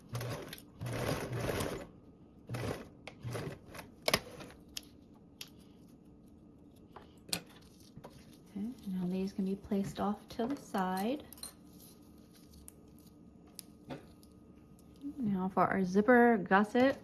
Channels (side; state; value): both; identical; correlation 1.00